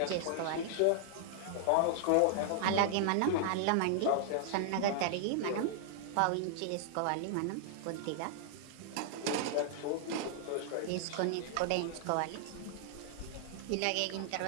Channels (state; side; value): different; both; correlation -0.01